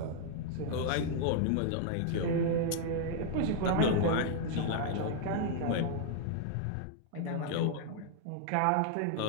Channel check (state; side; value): different; both; correlation 0.00